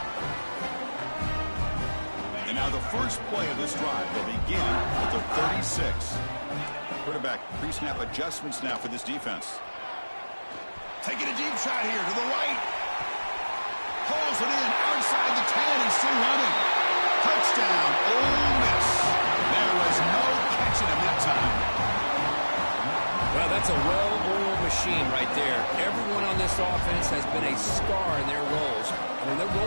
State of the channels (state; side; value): inverted; both; correlation -1.00